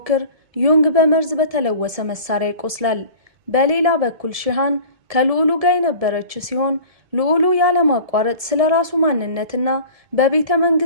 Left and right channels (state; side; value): late; left; 1.7 ms